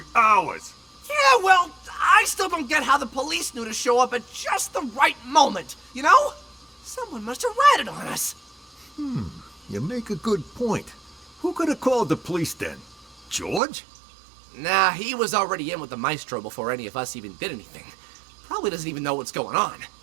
ours. Yeah, well, I still don't get how the police knew to show up at just the right moment, you know? Someone must have ratted on us. You make a good point. Who could have called the police then? George? Nah, he was already in with the maestro before any of us even did anything. Probably doesn't even know what's going on.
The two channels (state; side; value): drops out; left; at 13.6 s